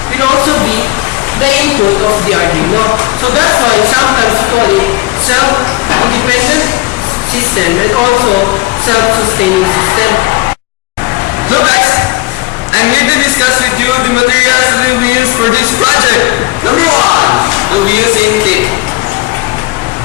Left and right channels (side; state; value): right; quieter; 21.1 dB